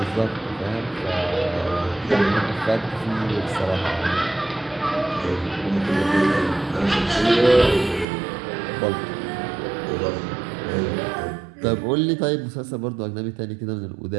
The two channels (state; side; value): drops out; left; at 8.1 s